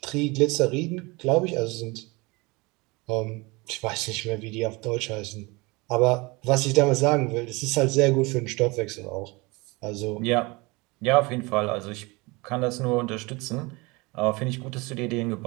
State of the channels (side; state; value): left; quieter; 25.3 dB